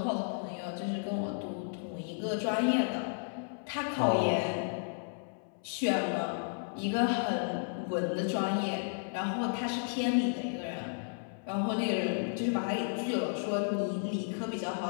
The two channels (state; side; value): silent; right; 56 dB below the other